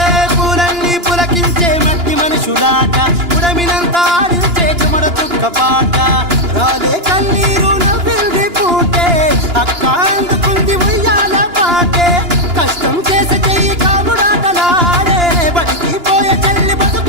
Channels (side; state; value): left; late; 2.9 ms